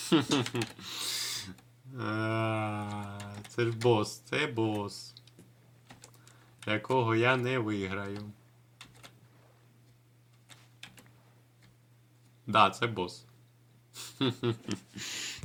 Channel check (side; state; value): both; identical; correlation 1.00